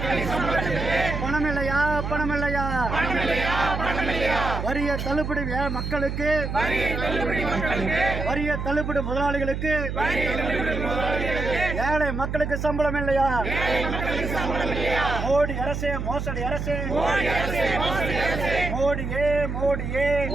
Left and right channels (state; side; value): noise; right; hum, 4 dB below the sound